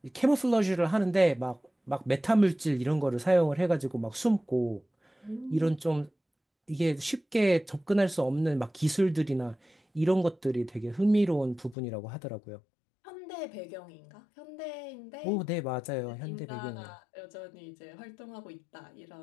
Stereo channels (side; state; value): right; drops out; at 11.8 s